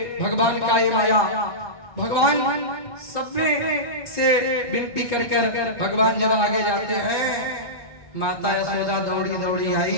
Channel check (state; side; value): late; right; 1.2 ms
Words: भगवान का ये माया, भगवान सब से विनती कर कर भगवान जब आगे जाते हैं, माता यशोदा दौड़ी दौड़ी आई,